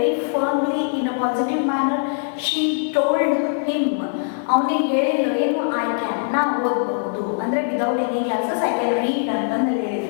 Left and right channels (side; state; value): right; silent; 65 dB below the other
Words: firmly in a positive manner she told him. ಅವನಿಗೆ ಹೇಳಿದ್ರು ಏನು? I can, ನಾ ಓದಬಹುದು ಅಂದ್ರೆ without any glasses I can read ಅಂತಂದು